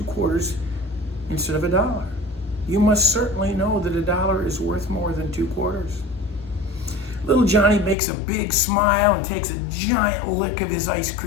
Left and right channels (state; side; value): drops out; right; at 8.0 s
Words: quarters instead of $1. You must certainly know that $1 is worth more than 2 quarters." Little Johnny makes a big smile and takes a giant lick of his ice